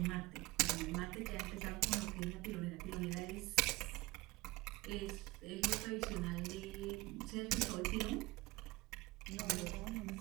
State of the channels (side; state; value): left; quieter; 20.3 dB